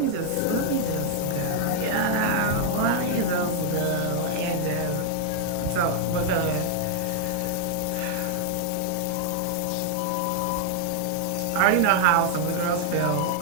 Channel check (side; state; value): both; different; correlation 0.00